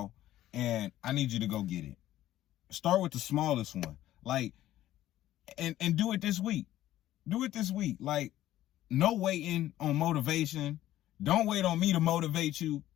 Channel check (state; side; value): quieter; right; 13.8 dB